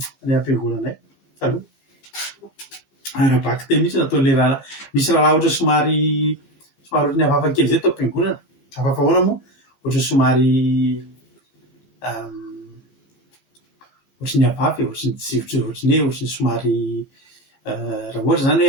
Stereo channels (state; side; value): late; right; 15 ms